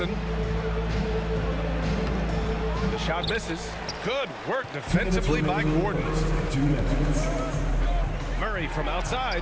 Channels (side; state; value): both; identical; correlation 1.00